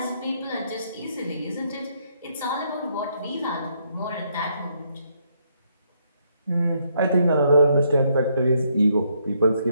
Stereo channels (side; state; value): both; inverted; correlation -0.73